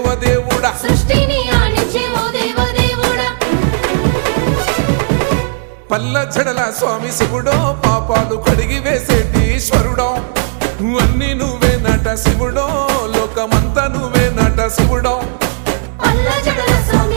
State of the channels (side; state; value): left; silent; digital silence